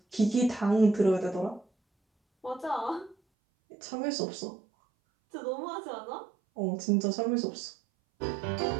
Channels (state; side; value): drops out; left; at 3.2 s